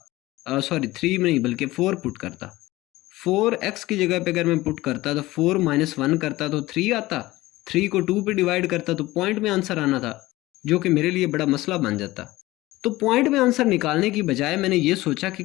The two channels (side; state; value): right; quieter; 18.4 dB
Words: सॉरी 3 नहीं बल्कि 4 पुट करता, 4x की जगह पे अगर मैं पुट करता तो 4 - 1 करता तो 3 आता, 3 को 2 पे डिवाइड करता तो पॉइंट में आंसर आना था, जो कि मेरे लिए बड़ा मसला बन जाता। तो पॉइंट में आंसर निकालने की बजाय मैंने ये सोचा कि